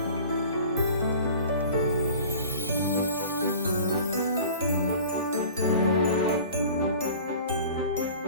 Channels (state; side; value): inverted; both; correlation -0.42